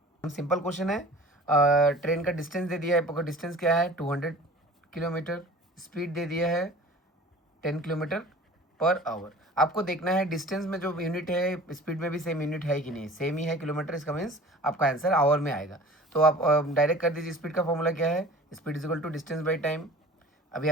simple question है. Train का distance दे दिया है, आपका distance क्या है 200 किलोमीटर, स्पीड दे दिया है 10 किलोमीटर पर आवर. आपको देखना है डिस्टेंस में जो यूनिट है स्पीड में भी सेम यूनिट है कि नहीं. सेम ही है किलोमीटर, इसका मीन्स आपका आंसर आवर में आएगा. तो आप डायरेक्ट कर दीजिए. स्पीड का फॉर्मूला क्या है, speed is equal to distance by time. अभी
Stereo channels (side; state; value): both; normal; correlation 0.43